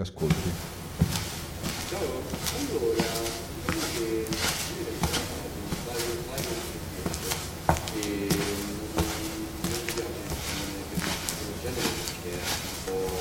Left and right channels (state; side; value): identical; both; correlation 1.00